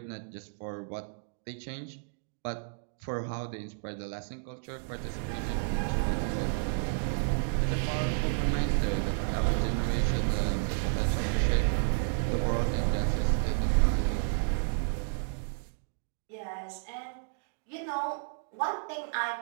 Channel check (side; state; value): left; silent; digital silence